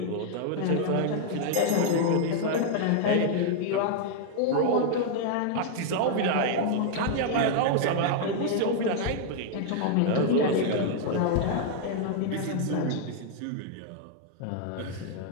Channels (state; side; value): different; both; correlation 0.00